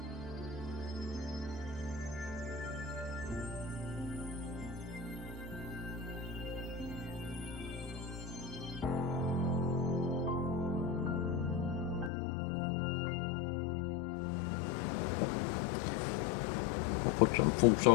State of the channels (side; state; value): right; drops out; at 12.1 s